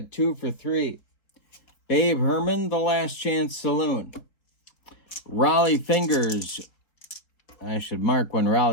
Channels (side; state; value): right; late; 4.1 ms